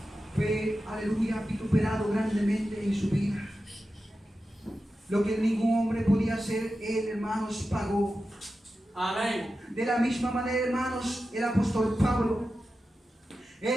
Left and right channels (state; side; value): normal; both; correlation 0.92